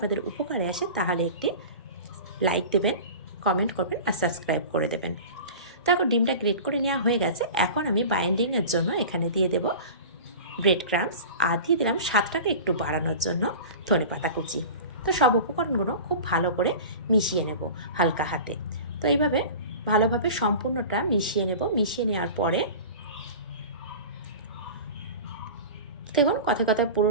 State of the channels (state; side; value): inverted; both; correlation -0.35